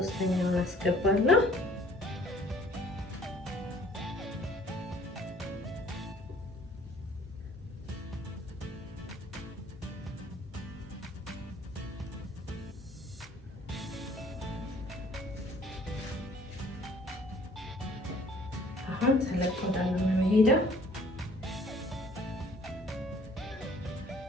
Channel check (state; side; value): normal; both; correlation 0.56